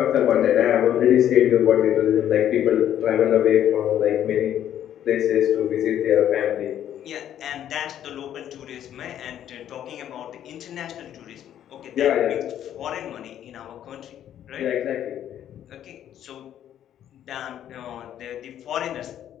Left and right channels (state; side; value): quieter; right; 10.7 dB